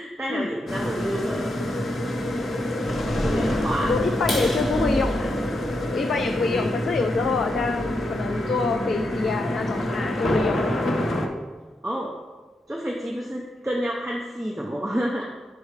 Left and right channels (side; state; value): both; normal; correlation 0.83